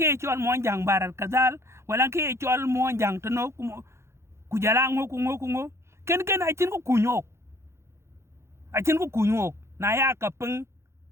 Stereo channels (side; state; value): left; late; 0.13 ms